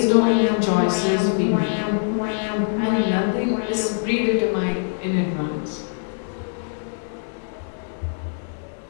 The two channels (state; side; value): silent; right; digital silence